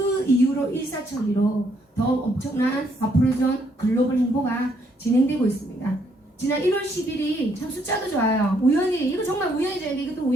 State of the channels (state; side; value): normal; both; correlation 0.71